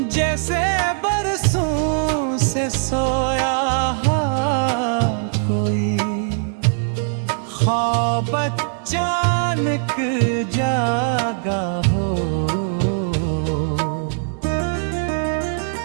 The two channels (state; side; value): silent; left; digital silence